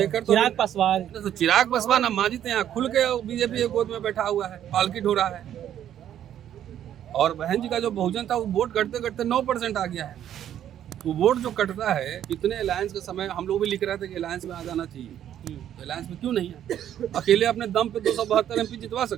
चिराग पासवान। तो चिराग पासवान अब मांझी यहाँ खुल के बीजेपी के गोद में बैठा हुआ है, पालकी ढो रहा है। और बहन जी का जो बहुजन था वो वोट करते करते 9% आ गया है। तो वोट जो कटता है, इतने अलायंस के समय हम लोग भी लिख रहे थे कि अलायंस में आ जाना चाहिए, तो अलायंस में क्यों नहीं है? अकेले अपने दम पे 272 एमपी जितवा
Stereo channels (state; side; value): quieter; left; 10.6 dB